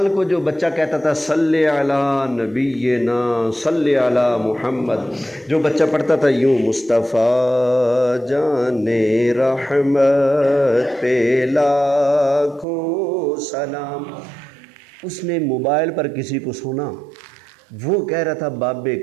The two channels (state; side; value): drops out; left; at 12.7 s